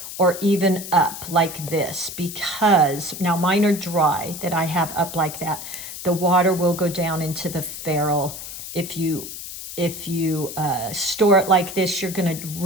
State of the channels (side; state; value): left; noise; hiss, 10 dB below the sound